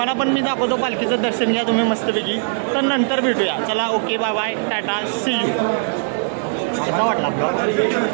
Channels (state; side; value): silent; left; 58 dB below the other